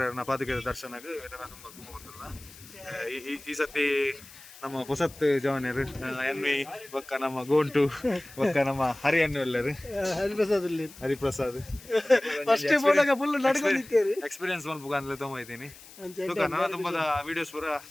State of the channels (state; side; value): noise; left; hiss, 20 dB below the sound